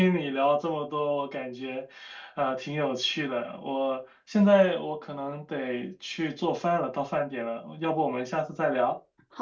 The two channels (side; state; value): both; identical; correlation 1.00